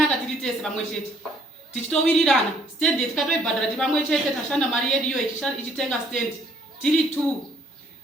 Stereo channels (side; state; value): both; normal; correlation 0.63